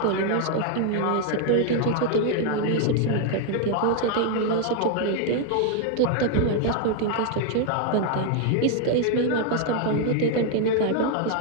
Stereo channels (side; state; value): both; different; correlation 0.00